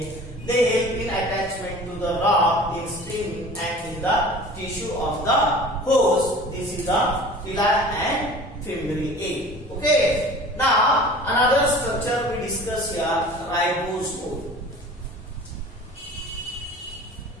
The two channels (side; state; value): both; normal; correlation 0.42